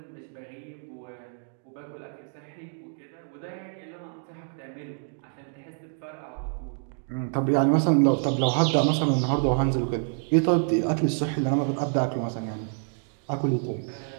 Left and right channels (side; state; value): left; silent; 60 dB below the other